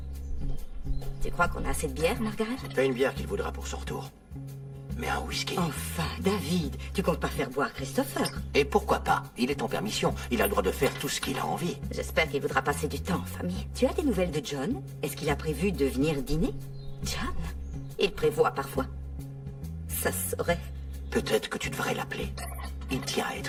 Tu crois qu'on a assez de bière, Margaret? Pas une bière qu'il voudra pour son retour. Mais un whisky. Enfin, David, tu comptes pas faire boire Christopher? Et pourquoi pas? Il est en permission. Il a le droit de faire tout ce qu'il a envie. J'espère qu'il voudra passer du temps en famille. Tu as des nouvelles de John? Est-ce qu'il a prévu de venir dîner? John? Il prévoit parfois. Ça saurait. Peut-être que tu devrais l'appeler. Il tient à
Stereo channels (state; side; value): identical; both; correlation 1.00